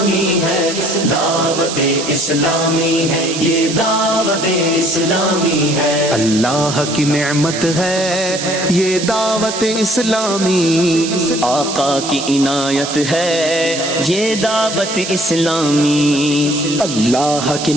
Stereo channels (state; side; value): noise; right; hiss, 7 dB below the sound